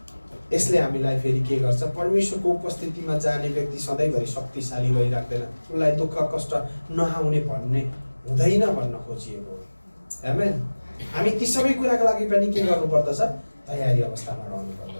यसले हामीलाई फेरि के गर्छ, परमेश्वरको उपस्थितिमा जाने व्यक्ति सधैँभरि शक्तिशाली भइराख्दैन। उसलाई दुःख कष्ट नआउने भन्ने हुँदैन भन्न खोजिएको हो। आमेन। हामी ती सबै कुराको लागि पनि के गर्नुपर्दछ, तयारी अवस्थामा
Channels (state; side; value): inverted; both; correlation -1.00